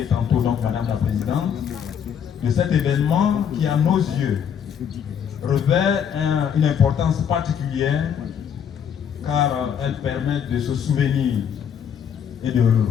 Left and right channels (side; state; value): right; quieter; 8.1 dB